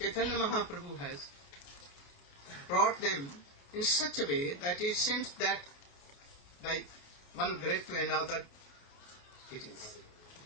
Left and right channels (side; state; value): right; late; 28 ms